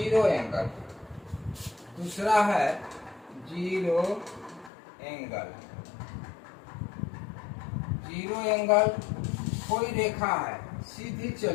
angle. दूसरा है जीरो एंगल। जीरो एंगल कोई रेखा है सीधी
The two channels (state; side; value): drops out; right; at 4.7 s